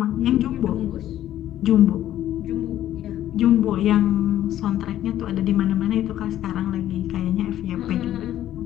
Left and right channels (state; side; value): quieter; right; 12.4 dB